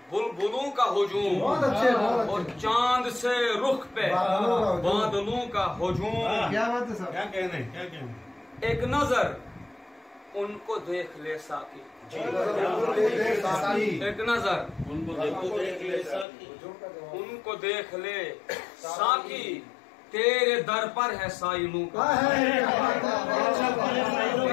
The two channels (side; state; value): right; drops out; at 16.2 s